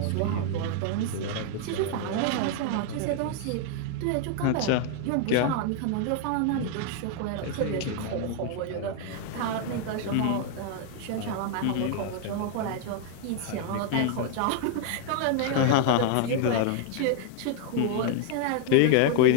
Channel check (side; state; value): both; different; correlation 0.00